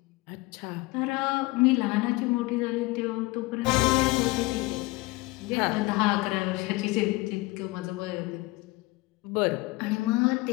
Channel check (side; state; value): right; quieter; 22.4 dB